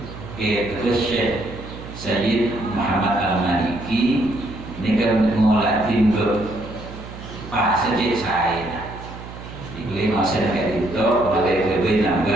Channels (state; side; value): noise; right; hum, 13 dB below the sound